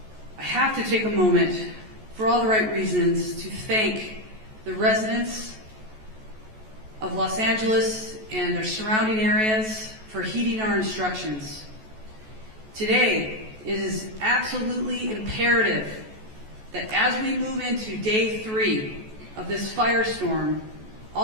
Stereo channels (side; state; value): left; late; 14 ms